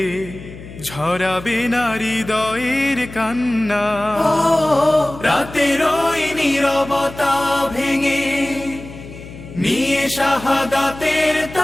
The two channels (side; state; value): left; noise; hum, 15 dB below the sound